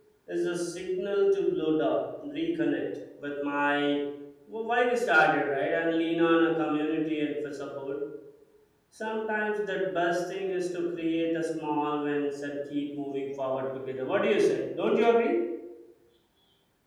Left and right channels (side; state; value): both; identical; correlation 1.00